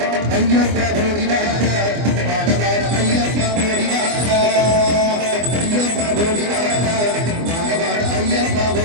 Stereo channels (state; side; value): late; left; 24 ms